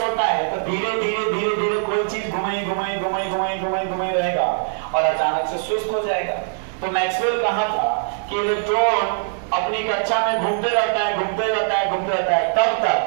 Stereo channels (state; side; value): silent; left; digital silence